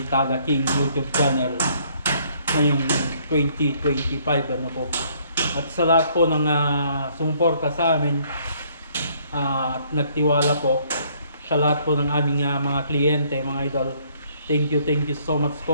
King YouTube channel ngayong 2025 po. At sa lahat po ng sumuporta sa amin at nagtiwala po sa lahat po ng aming mga kliyente, mga idol, thank you so much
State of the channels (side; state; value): both; inverted; correlation -0.65